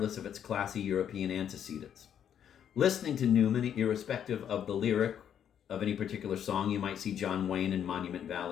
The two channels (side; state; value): right; quieter; 9.1 dB